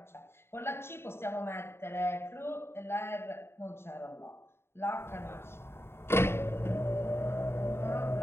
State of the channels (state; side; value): late; right; 0.12 ms